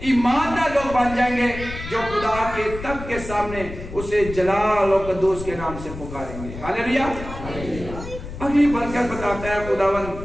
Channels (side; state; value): left; noise; rumble, 11 dB below the sound